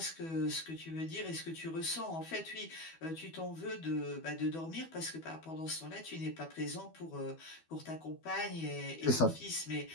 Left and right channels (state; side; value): late; right; 12 ms